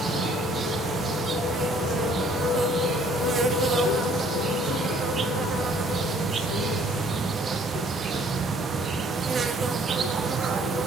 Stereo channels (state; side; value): normal; both; correlation 0.59